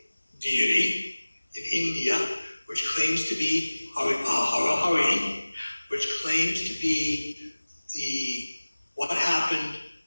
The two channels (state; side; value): inverted; both; correlation -1.00